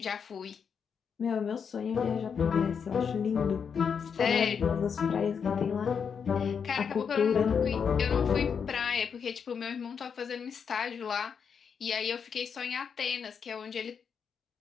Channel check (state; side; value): quieter; right; 6.7 dB